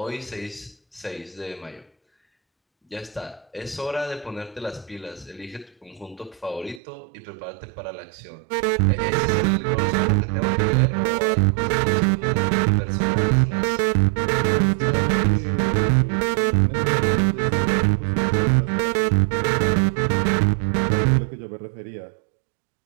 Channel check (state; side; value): drops out; left; at 6.8 s